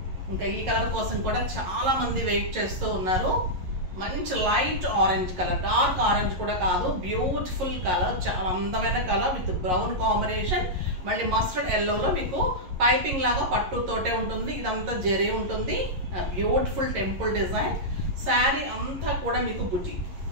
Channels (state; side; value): late; left; 11 ms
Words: ఇంకా ఈ కలర్ కోసం కూడా చాలా మంది వెయిట్ చేస్తూ ఉన్నారు. మంచి light orange colour, dark orange కూడా కాదు, బ్యూటిఫుల్ కలర్, చాలా అందమైన కలర్ విత్ బ్రౌన్ కాంబినేషన్. మళ్ళీ మస్టర్డ్ ఎల్లోలో మీకు పైపింగ్ లాగా పట్టుతోటే ఉంటుంది. ఇదంతా జరీ ఉంటుంది. Beautiful temple design. శారీ అంతా కూడా మీకు బుటీ,